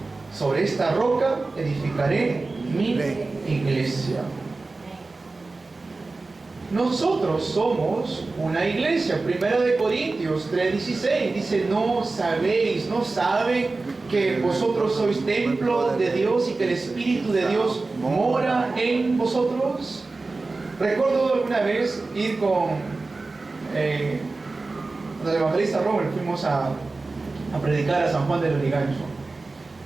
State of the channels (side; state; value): left; quieter; 3.6 dB